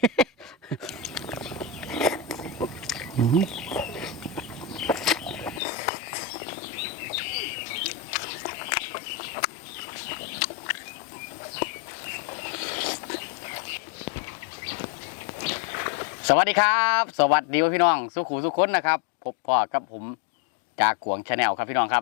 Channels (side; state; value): right; drops out; at 5.6 s